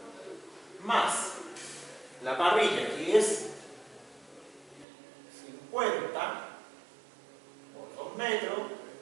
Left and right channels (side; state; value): left; drops out; at 4.9 s